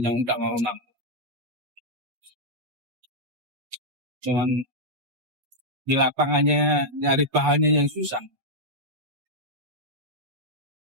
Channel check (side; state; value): left; late; 8.3 ms